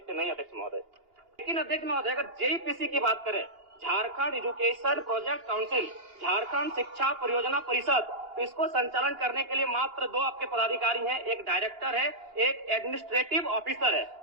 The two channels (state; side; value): late; left; 2.8 ms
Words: नहीं, अध्यक्ष महोदय। लेकिन अध्यक्ष महोदय, अगर जेईपीसी की बात करें, Jharkhand education project council, Jharkhand शिक्षा परियोजना परिषद, तो इसको संचालन करने के लिए मात्र 2 आपके पदाधिकारी हैं, एक डायरेक्टर है, एक एडमिनिस्ट्रेटिव ऑफिसर है,